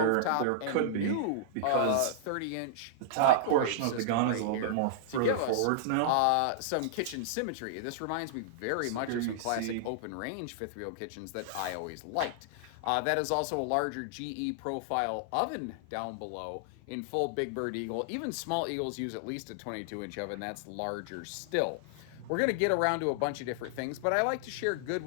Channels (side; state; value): both; different; correlation -0.01